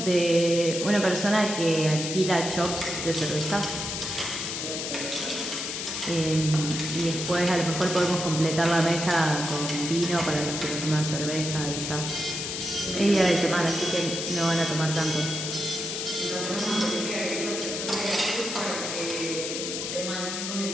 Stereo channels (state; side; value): noise; left; hiss, 4 dB below the sound